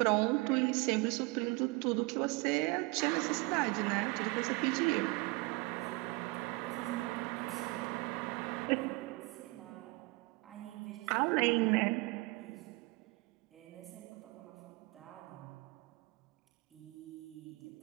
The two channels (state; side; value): quieter; left; 24.9 dB